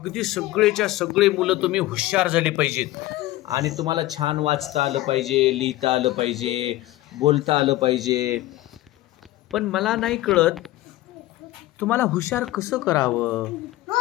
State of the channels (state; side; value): quieter; right; 16.6 dB